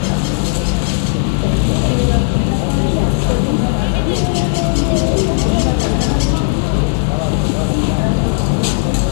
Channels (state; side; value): silent; right; 66 dB below the other